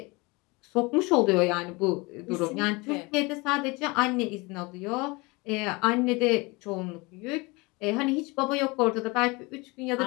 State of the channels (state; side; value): quieter; right; 25.6 dB